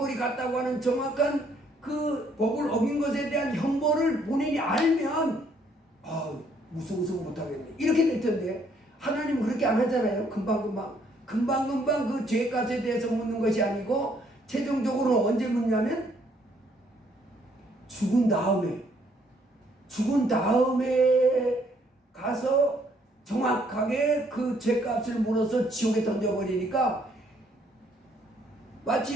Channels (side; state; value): both; normal; correlation 0.67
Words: 갔다고 하는 정확한 그 법을 어긴 것에 대한 형벌을 본인이 알면 무서워서 못하겠네 이렇게 될 텐데, 하나님은 그렇게 안 하잖아요. 금방금방 그 죄값에 대해서 묻는 것이 아니고 최종적으로 언제 묻냐면 죽은 다음에 가서 정확하게 그 죄값을 물어서 지옥에 던져버리니까,